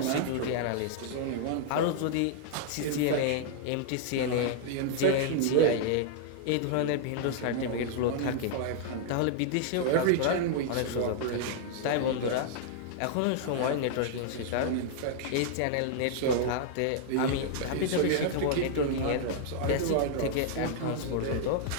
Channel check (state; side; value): different; both; correlation -0.01